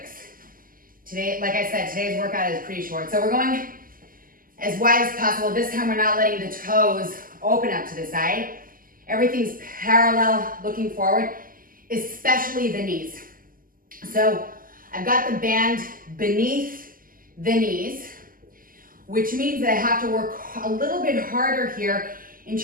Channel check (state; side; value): late; left; 0.41 ms